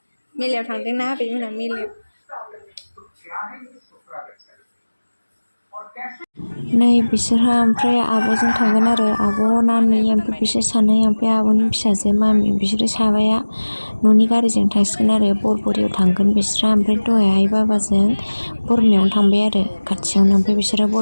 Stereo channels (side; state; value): both; inverted; correlation -1.00